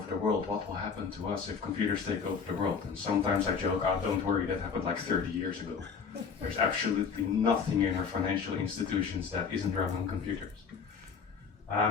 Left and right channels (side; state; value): right; quieter; 5.9 dB